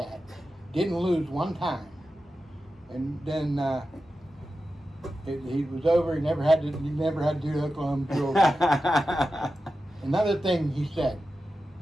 Didn't lose one time. And then he was over. He never had to do the Oklahoma drill. Another thing he said,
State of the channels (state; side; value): normal; both; correlation 0.92